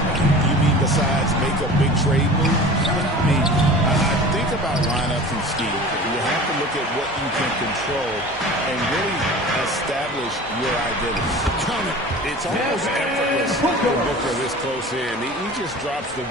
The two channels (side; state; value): both; normal; correlation 0.39